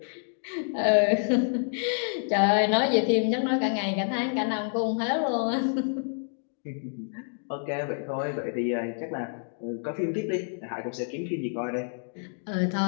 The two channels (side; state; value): right; silent; digital silence